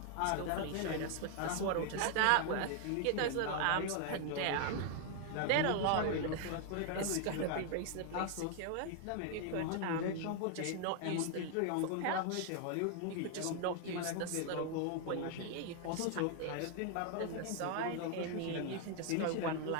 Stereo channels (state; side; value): different; both; correlation 0.00